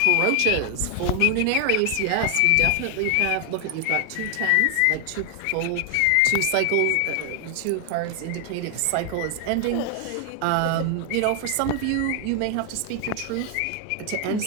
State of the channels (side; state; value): both; different; correlation 0.00